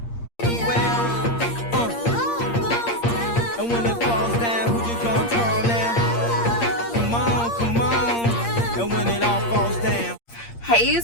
And when it falls down, who you gonna call now? Come on, come on. And when it all falls down. Hey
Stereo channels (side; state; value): right; late; 8.6 ms